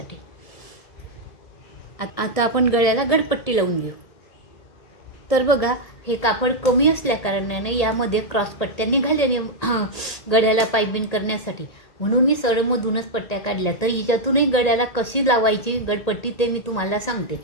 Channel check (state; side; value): late; right; 1.8 ms